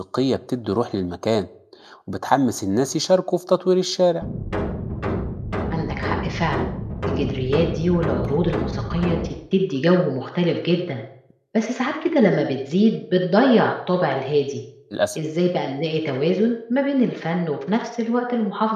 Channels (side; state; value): both; identical; correlation 1.00